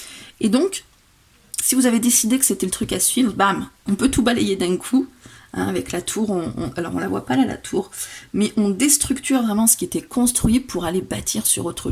Et donc, si vous avez décidé que c'était le truc à suivre, bam, on peut tout balayer d'un coup. Hein, avec la tour, alors on la voit pas là la tour, mais on déstructure vraiment ce qui était construit pour aller bâtir sur autre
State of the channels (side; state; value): both; identical; correlation 1.00